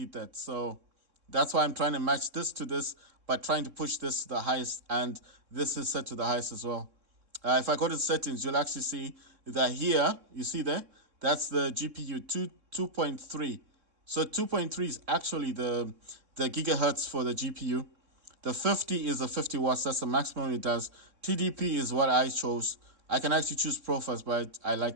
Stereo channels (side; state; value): left; late; 3.6 ms